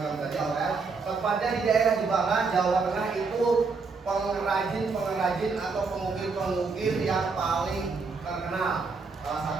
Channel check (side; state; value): left; quieter; 4.5 dB